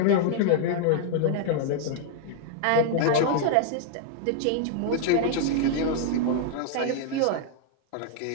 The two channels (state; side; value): different; both; correlation -0.01